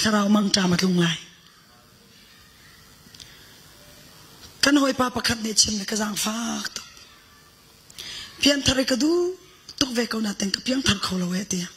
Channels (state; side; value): identical; both; correlation 1.00